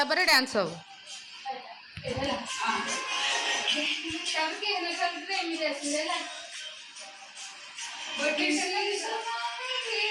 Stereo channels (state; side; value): identical; both; correlation 1.00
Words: ପରେ ଡ୍ୟାନ୍ସ ହବ।